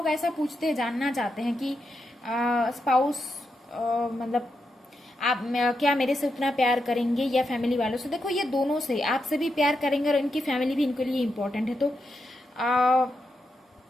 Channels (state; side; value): normal; both; correlation 0.85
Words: ऐसा पूछते हैं, जानना चाहते हैं कि स्पाउस मतलब आप क्या मेरे से उतना प्यार करेंगे या फैमिली वालों से। देखो ये दोनों से, आपसे भी प्यार करेंगे और इनकी फैमिली भी इनके लिए इम्पोर्टेंट है, तो